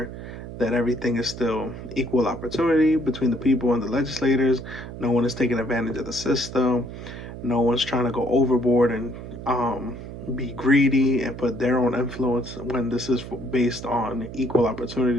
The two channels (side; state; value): right; noise; hum, 11 dB below the sound